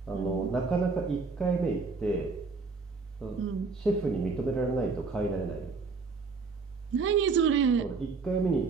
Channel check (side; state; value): left; quieter; 4.5 dB